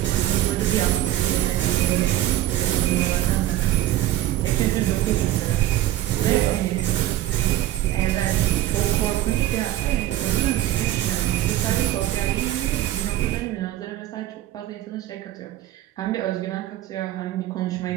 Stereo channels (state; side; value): quieter; left; 13.8 dB